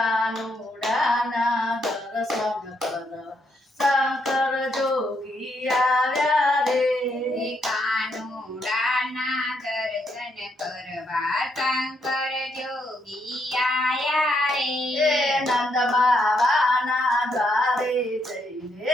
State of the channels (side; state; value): both; normal; correlation 0.76